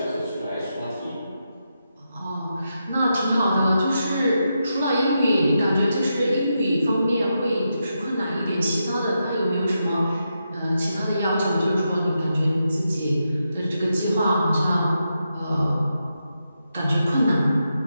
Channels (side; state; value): both; inverted; correlation -0.85